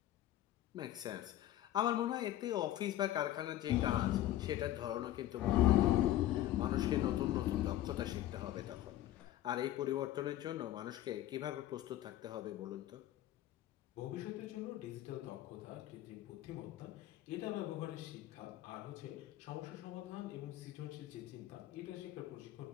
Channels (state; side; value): quieter; right; 13.8 dB